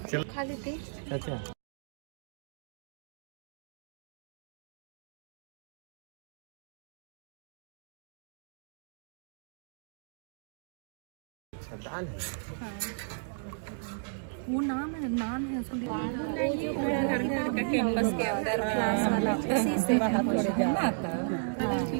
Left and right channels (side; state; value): left; silent; digital silence